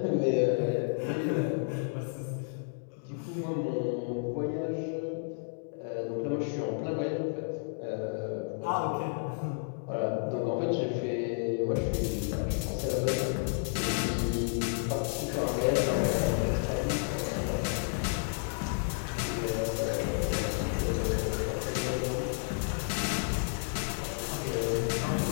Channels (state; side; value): silent; right; digital silence